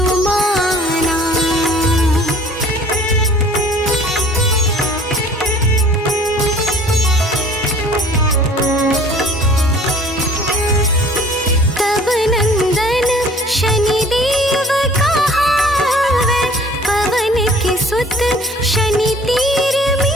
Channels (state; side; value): normal; both; correlation 0.51